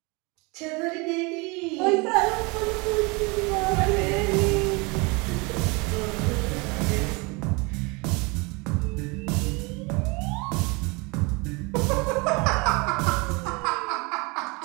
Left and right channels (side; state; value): left; quieter; 27.8 dB